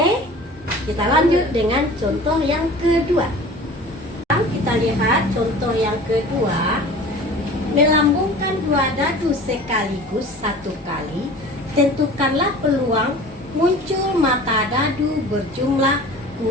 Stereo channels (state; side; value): normal; both; correlation 0.42